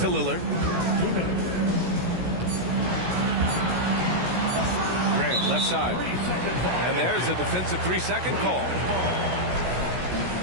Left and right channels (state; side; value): late; left; 16 ms